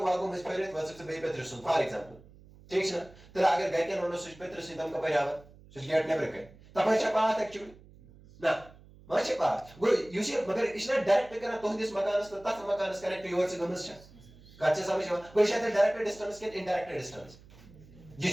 में फेरित वस से बे पेत्र सुन फॉर एग्जांपल ठीक है तो अगर गए के नोनो स्विच पेत्र से तम कपर आवा स्विच गेट ने ब्रेक तब है पाथ एक्चुअली ना माचे पाथ गो युस मगर इस डायरेक्ट करना तोहदिस मकानस तो तथ मकानस कनेक्ट योर से गमस छ कच्चे समझ गो शायद डायरेक्ट डिस्टेंस के इनडायरेक्ट डिस्टेंस ये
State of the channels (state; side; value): noise; right; hum, 23 dB below the sound